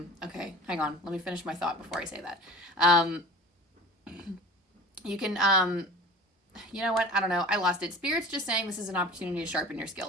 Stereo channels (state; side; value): normal; both; correlation 0.39